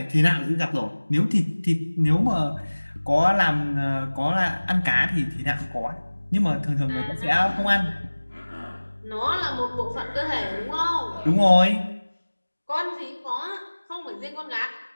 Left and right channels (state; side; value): inverted; both; correlation -1.00